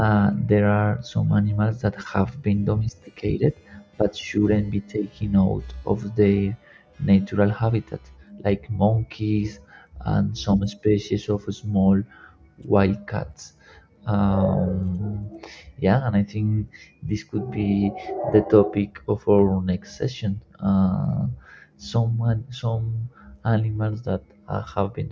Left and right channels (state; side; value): identical; both; correlation 1.00